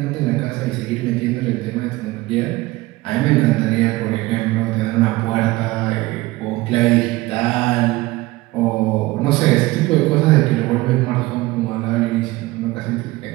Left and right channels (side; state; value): left; quieter; 19.7 dB